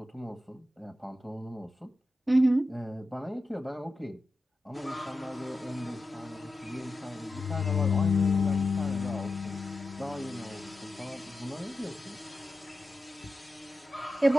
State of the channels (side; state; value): both; normal; correlation 0.91